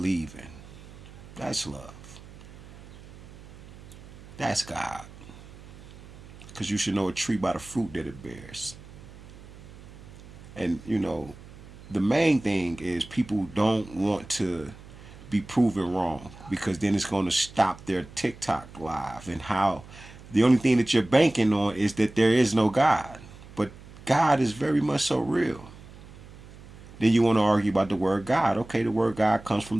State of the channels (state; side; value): noise; right; hum, 18 dB below the sound